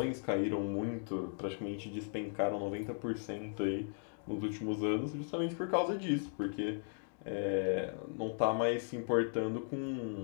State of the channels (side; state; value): right; silent; digital silence